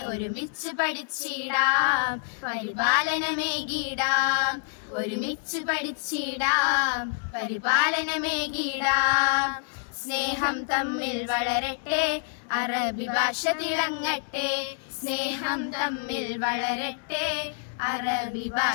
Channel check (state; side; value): silent; right; digital silence